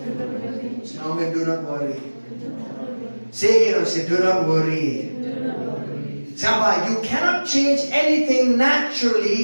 Say amen, do not worry. Say again, say do not worry. Samba, you cannot change anything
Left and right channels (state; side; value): inverted; both; correlation -1.00